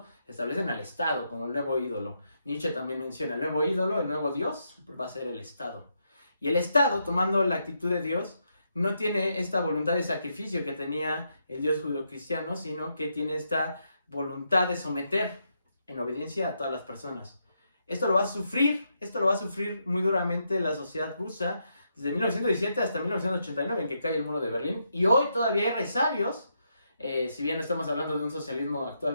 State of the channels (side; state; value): both; inverted; correlation -0.80